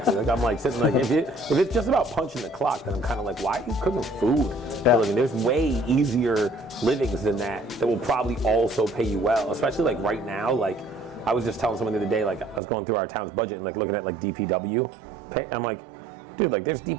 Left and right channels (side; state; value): left; drops out; at 12.6 s